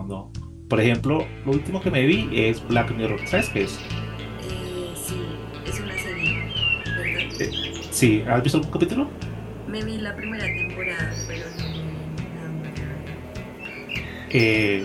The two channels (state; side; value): identical; both; correlation 1.00